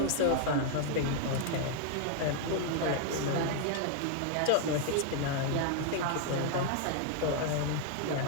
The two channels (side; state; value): both; different; correlation 0.00